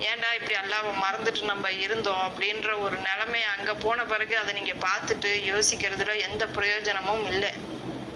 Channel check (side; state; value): both; identical; correlation 1.00